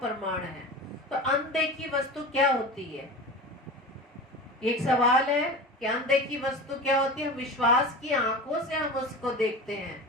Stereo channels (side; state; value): both; normal; correlation 0.31